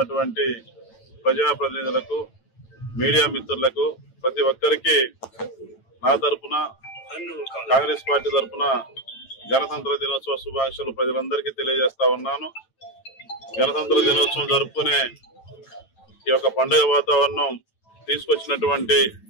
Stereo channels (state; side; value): late; right; 9.0 ms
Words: ప్రజాప్రతినిధులకు, మీడియా మిత్రులకు, ప్రతి ఒక్కరికి నా తరఫున, కాంగ్రెస్ పార్టీ తరఫున గణతంత్ర దినోత్సవ శుభాకాంక్షలు ప్రజలందరికీ తెలియజేస్తా ఉన్నాను. గణతంత్ర దినోత్సవం జరుపుకునే ఈ యొక్క పండుగ వాతావరణం తీసుకొచ్చినటువంటి